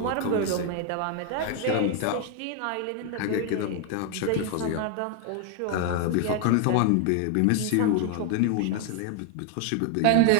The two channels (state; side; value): different; both; correlation 0.00